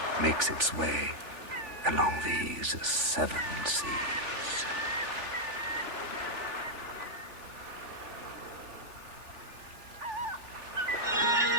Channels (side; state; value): left; late; 3.4 ms